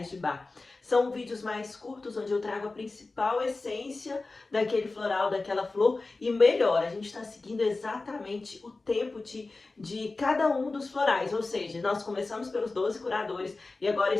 de Bach. São vídeos mais curtos, onde eu trago a principal essência daquele floral, daquela flor, e melhor, a gente está seguindo exatamente o tempo de cada um dos florais, ou seja, nós começamos pelos 12 curadores e agora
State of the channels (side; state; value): right; quieter; 3.5 dB